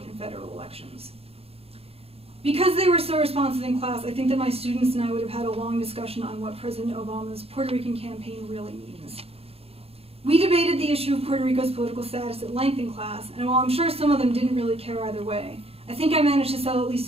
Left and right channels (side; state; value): left; late; 0.29 ms